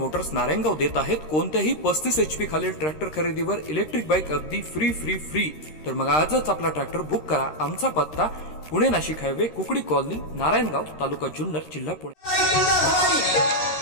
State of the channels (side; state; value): right; late; 13 ms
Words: Narayangaon देत आहेत कोणत्याही 35 HP खालील ट्रॅक्टर खरेदीवर इलेक्ट्रिक बाईक अगदी फ्री। तर मग आजच आपला ट्रॅक्टर बुक करा। आमचा पत्ता पुणे नाशिक हायवे कुकडी कॉलनी नारायणगाव तालुका जुन्नर जिल्हा पुणे।